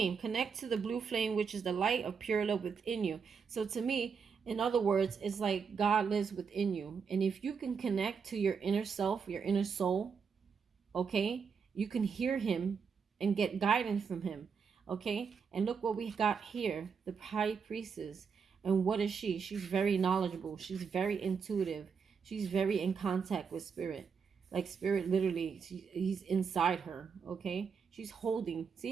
Connect to the blue flame, which is the light of pure love within you. So to me, in other words, it's like God lives within you. And if you can connect to your inner self, your inner soul, okay, you can hear him and get guidance from him, okay? And look what we got here, the high priestess. And what is she? She's very knowledgeable. She's very intuitive. She's very in contact with spirit. Like spirit literally, he's inside her, okay? She's holding.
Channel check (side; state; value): left; quieter; 6.1 dB